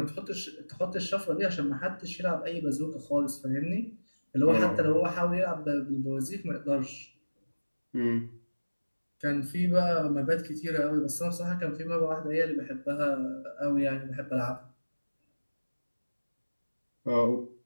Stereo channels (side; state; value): both; inverted; correlation -1.00